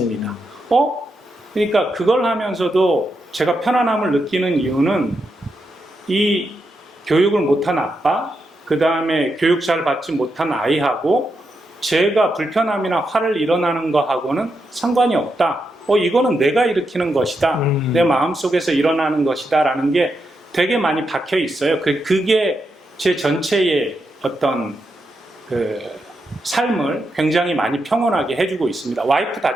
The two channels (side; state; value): both; normal; correlation 0.84